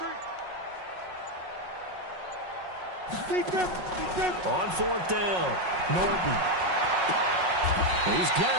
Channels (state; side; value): late; left; 5.5 ms